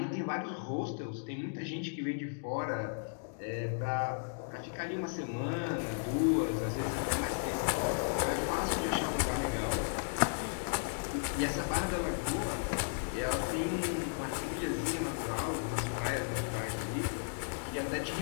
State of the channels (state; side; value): silent; right; digital silence